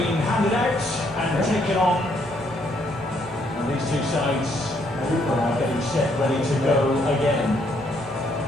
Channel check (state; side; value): normal; both; correlation 0.71